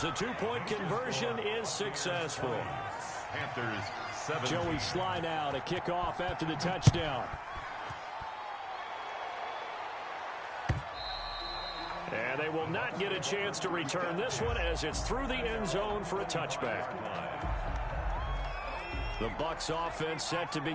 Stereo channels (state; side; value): identical; both; correlation 1.00